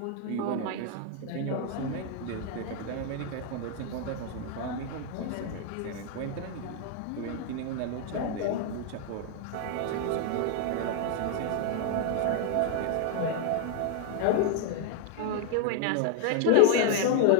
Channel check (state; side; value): different; both; correlation 0.00